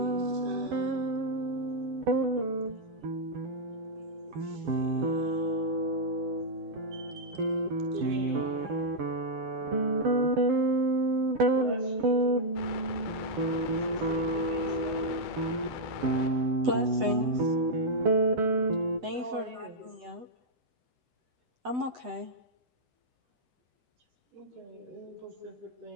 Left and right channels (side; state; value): left; late; 8.0 ms